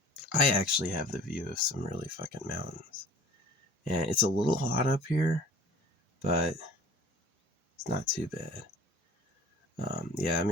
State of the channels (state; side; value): normal; both; correlation 0.47